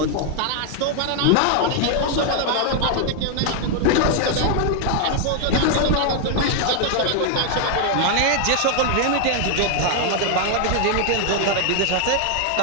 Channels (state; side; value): different; both; correlation 0.00